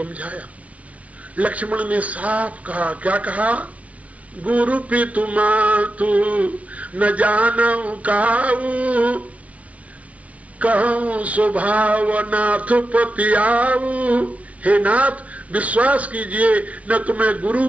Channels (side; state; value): left; late; 0.066 ms